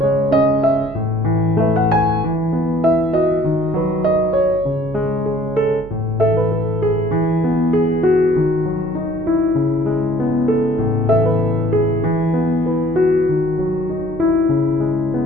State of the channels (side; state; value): right; noise; hum, 14 dB below the sound